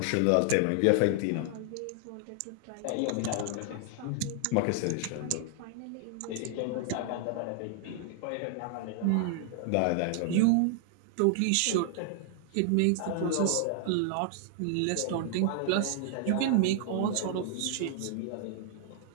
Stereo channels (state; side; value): different; both; correlation 0.00